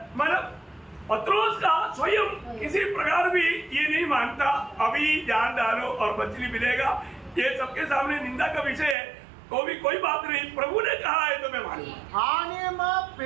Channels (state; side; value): drops out; left; at 9.0 s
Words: मतलब पत्रोस का स्वयं किसी प्रकार भी ये नहीं मानता अभी जान डालो और मछली मिलेगा, ये सबके सामने निंदा का विषय है, तो भी कोई बात नहीं, प्रभु ने कहा है तो मैं मानूंगा. आणि मग